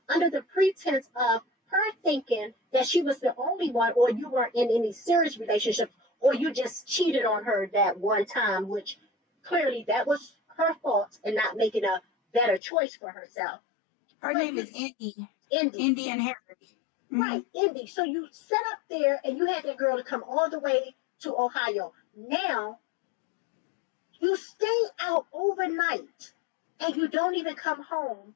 under the pretense of her thinking that she was the only one, or you weren't in any serious relationship, or you just cheated on her that one time, which clearly that was her fault and not making a better choice for herself. Her But name you, is Indy. Indy, Indy and Harry. Mm-hmm. right, Indy. So you sat up there and you had that girl to come all the way to Ohio. Now you stay out overnight and you don't even come home.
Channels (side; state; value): right; drops out; at 12.6 s